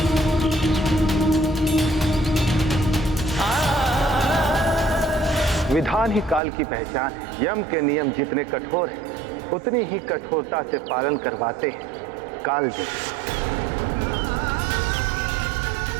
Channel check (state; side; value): drops out; left; at 6.4 s